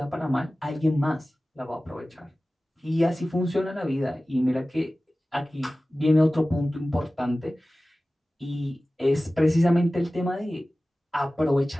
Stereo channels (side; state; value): both; normal; correlation 0.97